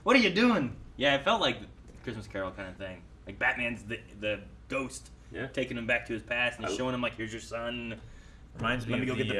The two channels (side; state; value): both; identical; correlation 1.00